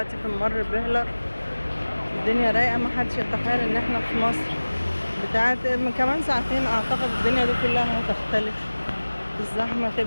في ممر بهلر، الدنيا رايقة، محدش يتخيل ان احنا في مصر بتاعت من كمان ساعتين. اعتقد الدنيا دي كلها هتختلف، الزحمة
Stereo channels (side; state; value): both; inverted; correlation -1.00